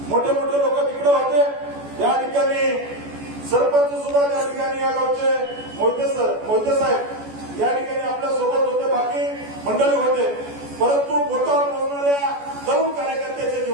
मोठे मोठे लोक तिकडे होते. या ठिकाणी सरपंच सुद्धा त्या ठिकाणी या गावचे मोहिते साहेब या ठिकाणी आपल्या सोबत होते, बाकी मंडळी होते. परंतु बोटावर मोजणाऱ्या तरुण कार्यकर्त्याच्या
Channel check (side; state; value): left; late; 14 ms